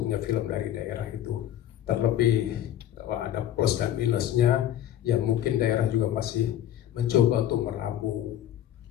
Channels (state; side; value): quieter; right; 11.6 dB